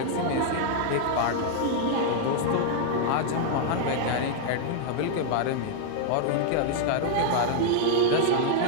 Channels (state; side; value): different; both; correlation -0.01